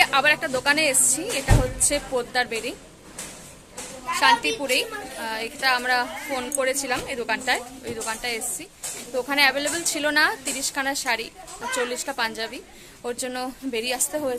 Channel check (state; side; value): identical; both; correlation 1.00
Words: আবার একটা দোকানে এসেছি, এটা হচ্ছে পোদ্দার বেরি, শান্তিপুরেই। এটা আমরা ফোন করেছিলাম এই দোকানটায়, ওই দোকানটায় এসেছি। তো ওখানে অ্যাভেলেবেল ছিল না 30খানা শাড়ি, 40টা পাঞ্জাবি, ওর জন্য বেরিয়ে আসতে